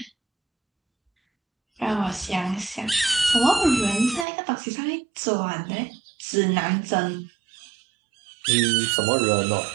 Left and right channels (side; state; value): left; drops out; at 4.2 s